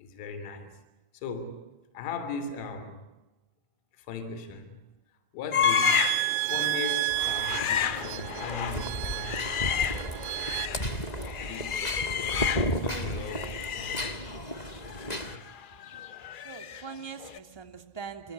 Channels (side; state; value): right; late; 2.0 ms